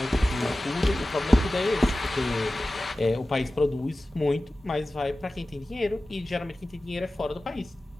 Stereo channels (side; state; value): both; normal; correlation 0.96